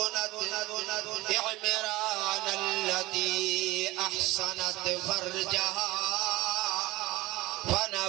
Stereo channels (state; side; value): quieter; left; 19.4 dB